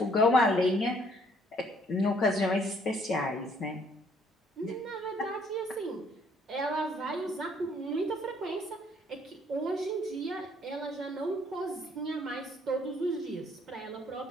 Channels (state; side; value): normal; both; correlation 0.64